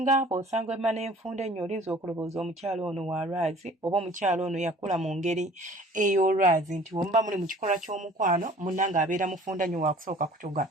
bw'osanga emma n'enfunda ennyo olinza okulowooza omukyala ono wa lwazi oba omukyala ono yakula mu ngeri ey'olwazi nti bwe muba muli mu kikolwa ky'omukwano munnange abeera mufunda nnyo waakusooka kutuga.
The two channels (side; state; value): both; normal; correlation 0.50